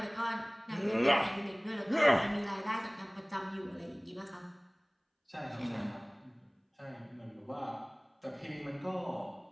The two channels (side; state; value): both; identical; correlation 1.00